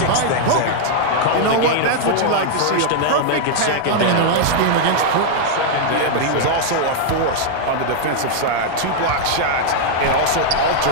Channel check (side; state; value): both; different; correlation -0.01